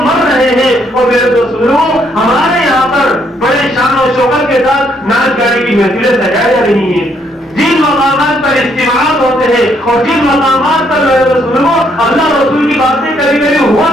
مر رہے ہیں. اور میرے دوستوں ہمارے یہاں پر بڑے شان و شوکت کے ساتھ ناچ گانے کی محفلیں سجائی جا رہی ہیں. جن مقامات پر اجتماعات ہوتے ہیں اور جن مقامات پر اللہ رسول کی باتیں کبھی کبھی ہوا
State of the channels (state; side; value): normal; both; correlation 0.70